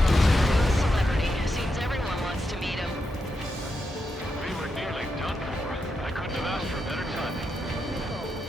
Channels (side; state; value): both; normal; correlation 0.85